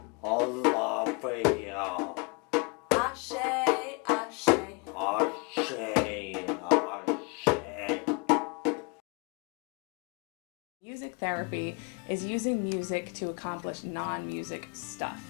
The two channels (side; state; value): right; quieter; 32.8 dB